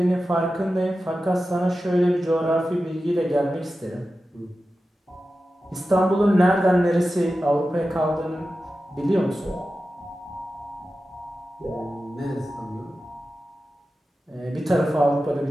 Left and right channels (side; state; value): both; normal; correlation 0.93